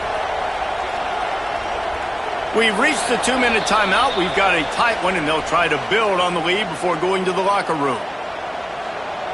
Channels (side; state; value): both; identical; correlation 1.00